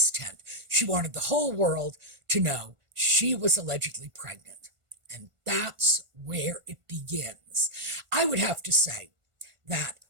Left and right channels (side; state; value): left; late; 1.4 ms